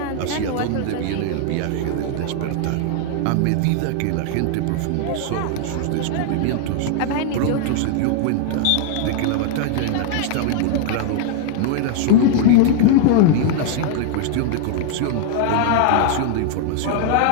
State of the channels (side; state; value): both; different; correlation 0.00